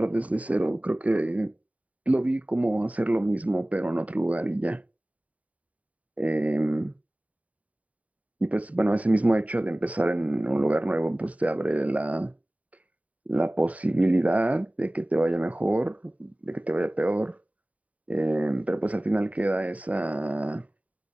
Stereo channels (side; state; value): left; late; 0.069 ms